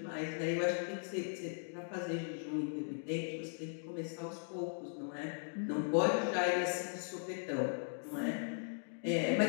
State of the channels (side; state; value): right; silent; digital silence